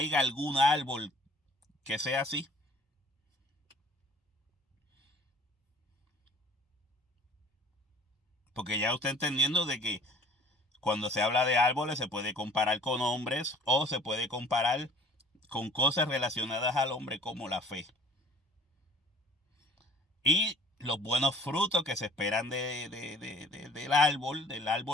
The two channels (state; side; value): normal; both; correlation 0.51